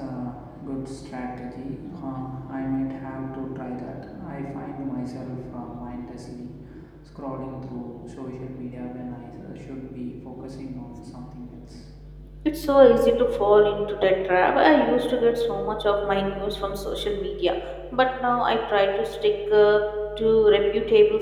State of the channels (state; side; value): identical; both; correlation 1.00